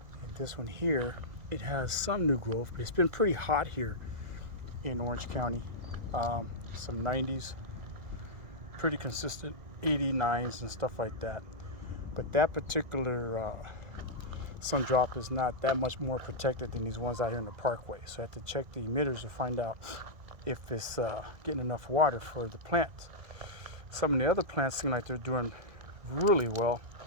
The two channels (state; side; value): late; left; 1.9 ms